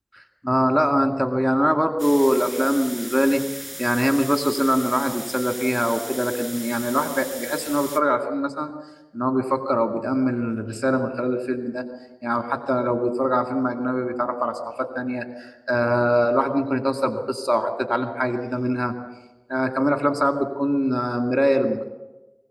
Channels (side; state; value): both; identical; correlation 1.00